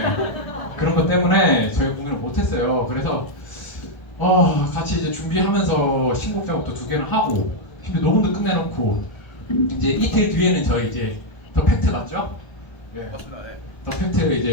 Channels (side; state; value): right; late; 1.3 ms